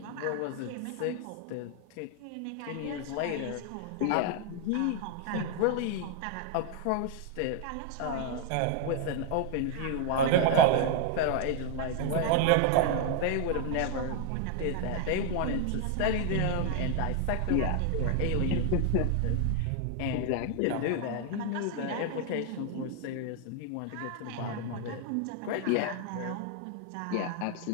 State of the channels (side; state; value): both; different; correlation 0.00